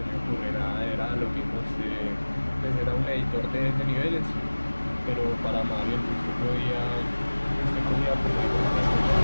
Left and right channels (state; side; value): inverted; both; correlation -1.00